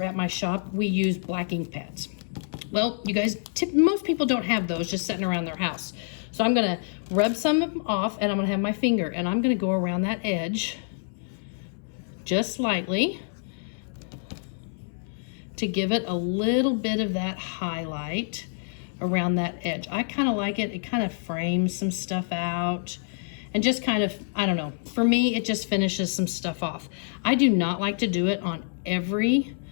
at my shop, we use black ink pads. Well, you guys, most people don't have those just sitting around their house. So I'm gonna rub some off and I'm gonna have my finger and I'm gonna go around that edge just lightly to give it a little bit of that highlight around that edge. I kind of like it. It kind of frames some stuff out and just kind of, I don't know, for me, it just finishes some stuff off. I do not like to do it on every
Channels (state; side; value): silent; right; 60 dB below the other